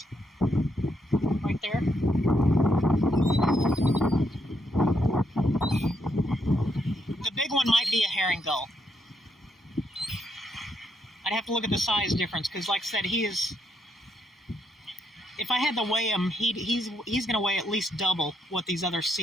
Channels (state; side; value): normal; both; correlation 0.77